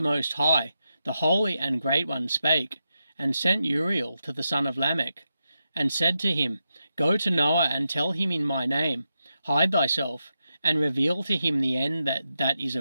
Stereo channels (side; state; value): both; inverted; correlation -0.87